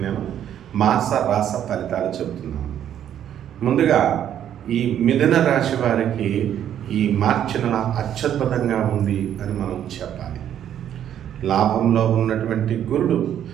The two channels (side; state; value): left; quieter; 10.2 dB